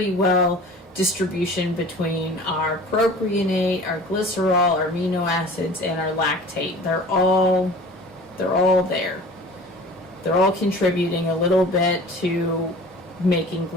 well distribution between our propionate, our glycerol, our amino acids, and our lactate. They're all there. They're all contributing a little bit to making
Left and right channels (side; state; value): both; normal; correlation 0.43